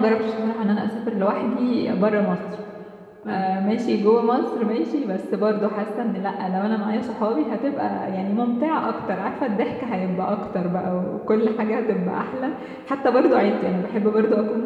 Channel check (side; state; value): both; identical; correlation 1.00